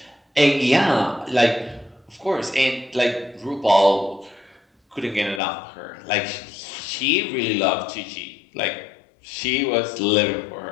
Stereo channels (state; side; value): drops out; right; at 5.4 s